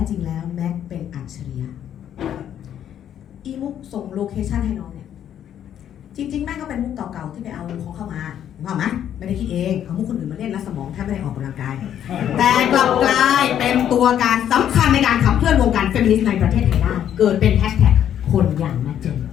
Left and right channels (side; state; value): right; quieter; 10.1 dB